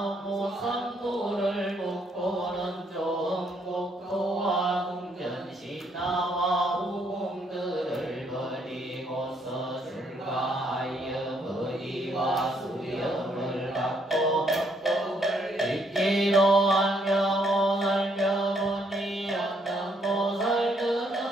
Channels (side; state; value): both; normal; correlation 0.71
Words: 무상도를 묻고는 좋은 국토와 궁전신하와